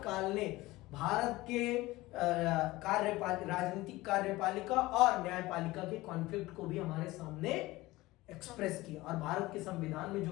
ने भारत के राजनीतिक कार्यपालिका और न्यायपालिका के कॉन्फ्लिक्ट को भी हमारे सामने एक्सप्रेस किया और भारत के संविधान में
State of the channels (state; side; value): quieter; right; 19.3 dB